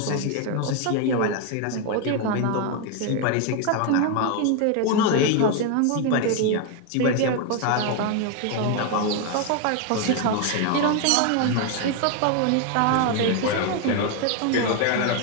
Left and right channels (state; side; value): different; both; correlation 0.01